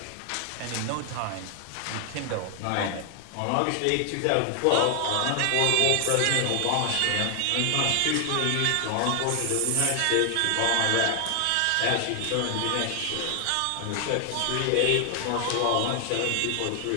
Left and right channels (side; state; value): both; different; correlation 0.00